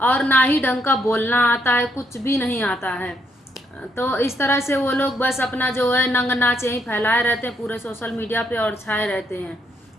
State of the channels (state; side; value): normal; both; correlation 0.75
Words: ना ही ढंग का बोलना आता है। कुछ भी नहीं आता है। तो इस तरह से वो लोग बस अपना जो है नंग नाच यहीं फैलाए रहते हैं पूरे सोशल मीडिया पे और छाए रहते हैं,